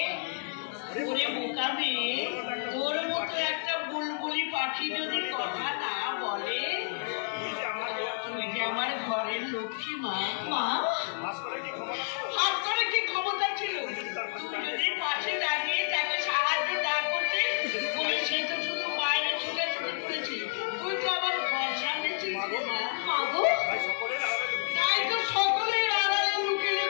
ওরে বোকা মেয়ে, তোর মতো একটা বুলবুলি পাখি যদি কথা না বলে, তুই যে আমার ঘরের লক্ষ্মী মা। মা, হাত করে কি ক্ষমতা ছিল? তুই যদি পাশে দাঁড়িয়ে তাকে সাহায্য না করতে, বলে সে তো শুধু বাইরে ছোটাছুটি করেছিল, তুই তো আমার ঘর সামনেছিস মা। মাগো, তাই তো সকলের আড়ালে লুকে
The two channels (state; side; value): silent; right; digital silence